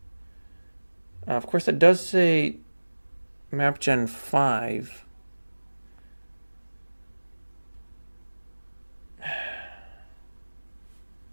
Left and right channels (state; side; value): inverted; both; correlation -1.00